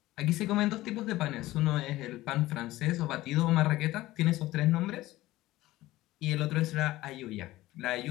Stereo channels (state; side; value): quieter; right; 17.1 dB